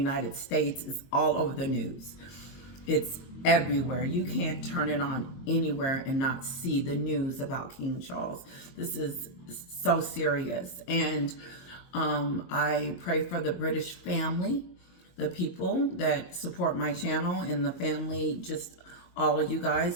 States is all over the news. It's everywhere. You can't turn it on anywhere and not see the news about King Charles. This is so serious. And I pray for the British family, the people that support my channel, and the family, just all of you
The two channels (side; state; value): right; late; 22 ms